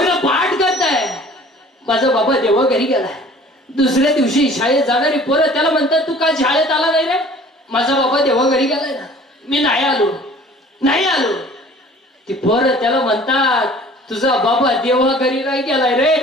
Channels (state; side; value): normal; both; correlation 0.49